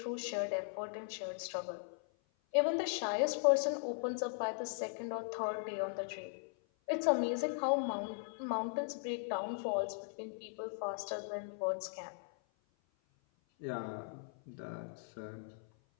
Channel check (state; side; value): silent; right; 52 dB below the other